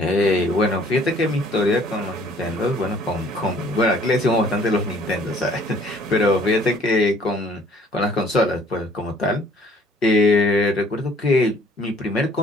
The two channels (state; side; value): normal; both; correlation 0.57